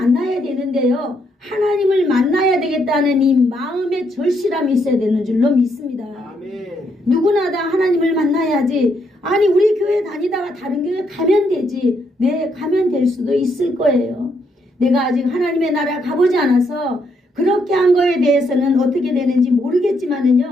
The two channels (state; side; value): normal; both; correlation 0.75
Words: 되는데요. 하나님을 만나야 되겠다는 이 마음의 절실함이 있어야 되는 줄로 믿습니다. 누구나 다 하나님을 만나야지. 아니 우리 교회 다니다가 다른 교회 가면 되지. 네, 가면 될 수도 있을 거예요. 내가 아직 하나님의 나라 가보지 않아서 그렇게 한 거에 대해서는 어떻게 되는지